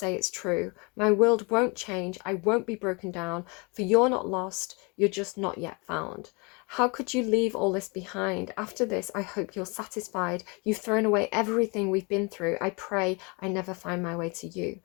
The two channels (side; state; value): right; quieter; 30.1 dB